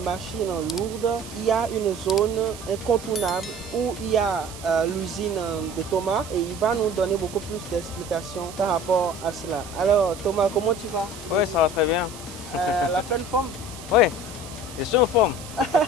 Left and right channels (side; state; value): right; noise; hiss, 15 dB below the sound